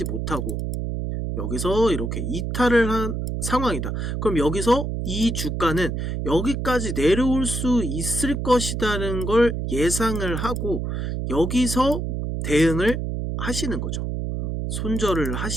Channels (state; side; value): noise; right; hum, 2 dB below the sound